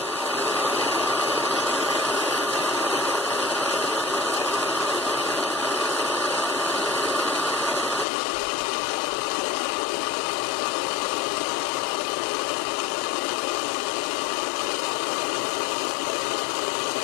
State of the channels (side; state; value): right; drops out; at 8.1 s